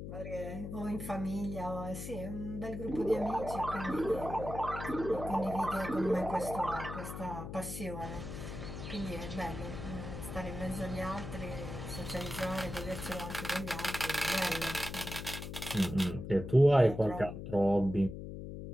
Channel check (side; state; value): left; noise; hum, 8 dB below the sound